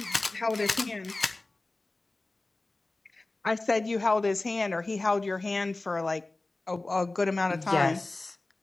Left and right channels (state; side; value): quieter; right; 3.0 dB